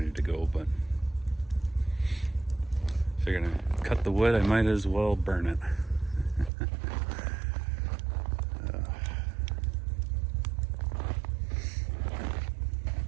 to go, but if you're gonna cut the wood, I might as well burn it.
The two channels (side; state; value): left; drops out; at 6.5 s